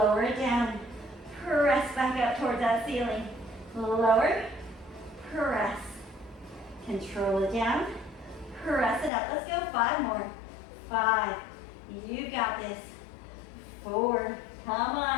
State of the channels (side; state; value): right; drops out; at 9.1 s